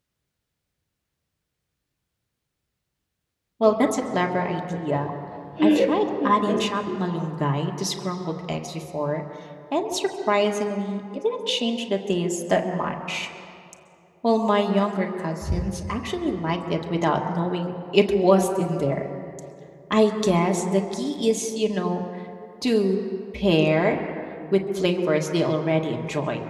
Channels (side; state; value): both; identical; correlation 1.00